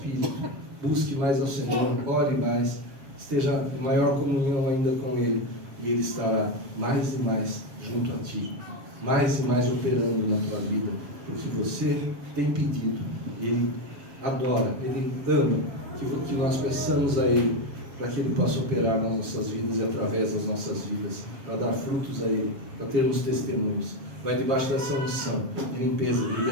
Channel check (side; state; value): left; late; 7.6 ms